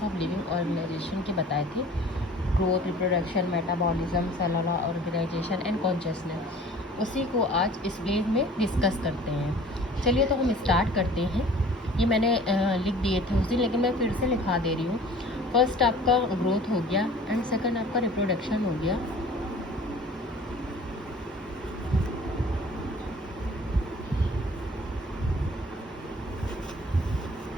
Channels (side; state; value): both; normal; correlation 0.47